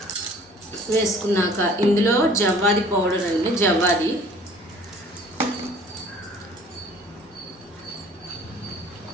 వేసుకున్నాక ఇందులో జవ్వాది పౌడర్ అండి, జవ్వాది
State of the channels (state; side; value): normal; both; correlation 0.51